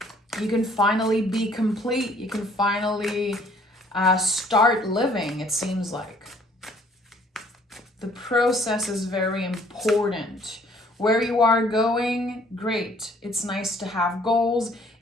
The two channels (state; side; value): normal; both; correlation 0.59